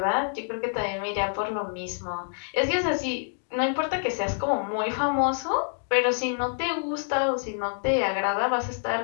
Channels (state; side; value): silent; right; digital silence